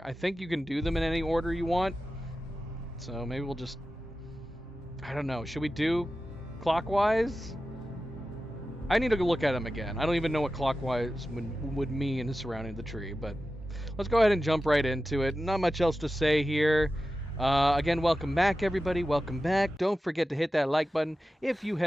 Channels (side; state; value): both; normal; correlation 0.93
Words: I think you can do them in any order you want, so maybe we'll just, I don't know, should we do clockwise? I need to go look at them again. I don't even know what clockwise would mean surrounding the tree, but let's go ahead and jump right into it. Not much else to say here. Again, welcome back, everybody. Welcome back. Don't forget to hit that like button if you